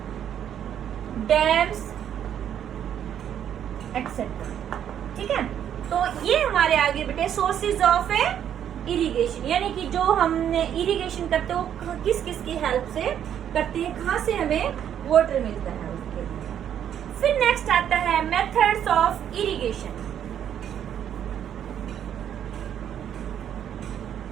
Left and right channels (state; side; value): quieter; left; 9.6 dB